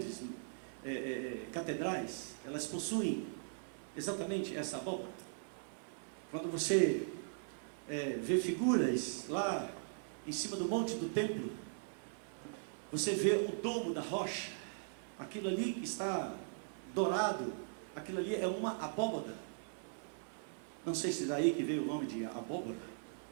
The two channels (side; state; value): left; silent; 51 dB below the other